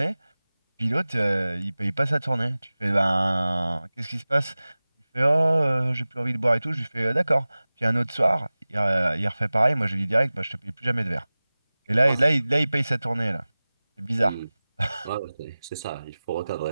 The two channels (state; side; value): inverted; both; correlation -0.98